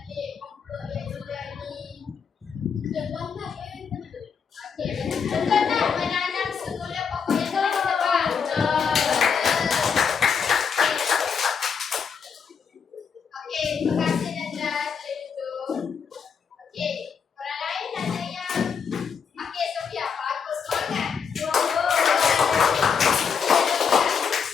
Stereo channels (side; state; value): right; quieter; 6.4 dB